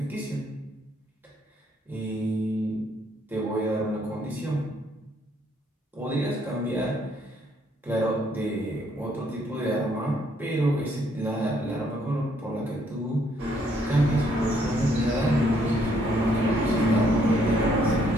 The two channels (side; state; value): both; normal; correlation 0.69